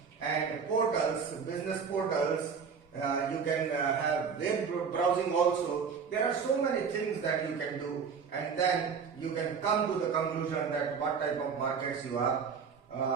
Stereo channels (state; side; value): quieter; left; 6.2 dB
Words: and portals, business portals you can have web browsing also. There are so many things that you can do, and then you can come to the conclusion that what type of markets you are